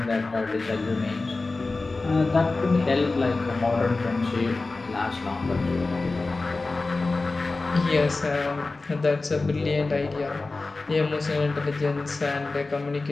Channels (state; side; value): quieter; right; 3.5 dB